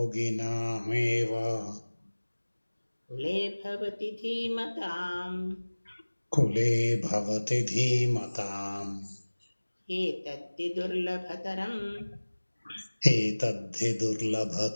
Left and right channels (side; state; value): both; inverted; correlation -1.00